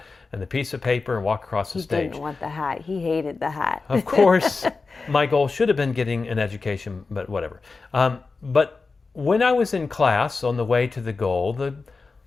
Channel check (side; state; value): right; quieter; 4.2 dB